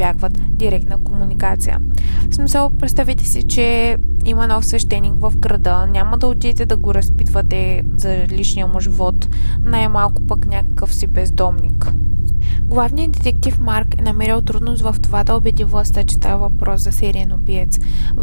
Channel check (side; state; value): both; inverted; correlation -1.00